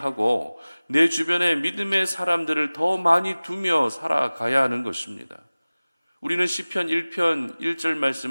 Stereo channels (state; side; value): inverted; both; correlation -0.99